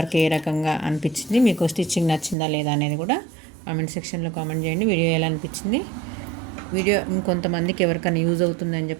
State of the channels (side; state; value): left; drops out; at 2.4 s